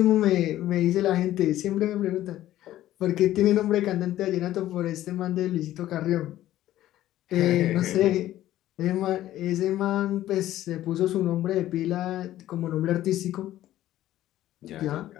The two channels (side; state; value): right; quieter; 13.8 dB